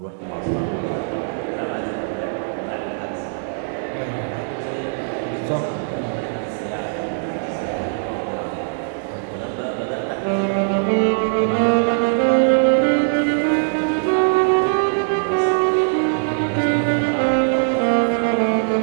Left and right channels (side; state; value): left; silent; digital silence